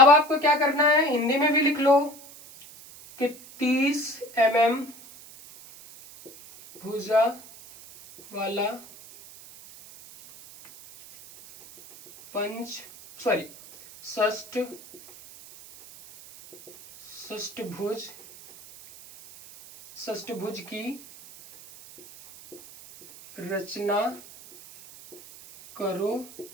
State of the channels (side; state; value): right; noise; hiss, 19 dB below the sound